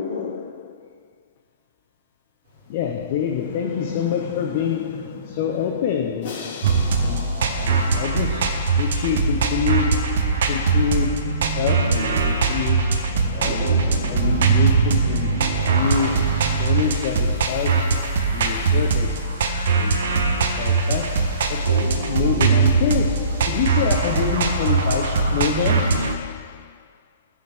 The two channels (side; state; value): both; inverted; correlation -0.49